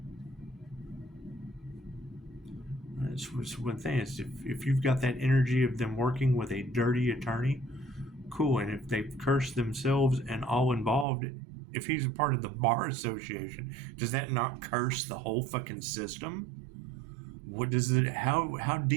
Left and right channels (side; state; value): left; drops out; at 11.1 s